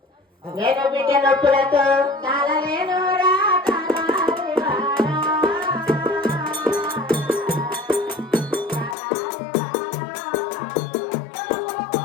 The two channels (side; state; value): right; drops out; at 9.0 s